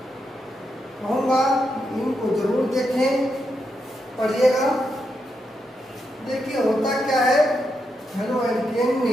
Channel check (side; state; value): both; normal; correlation 0.83